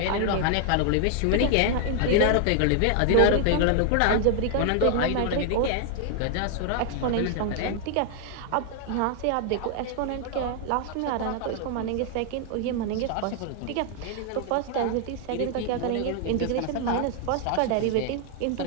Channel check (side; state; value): both; different; correlation 0.00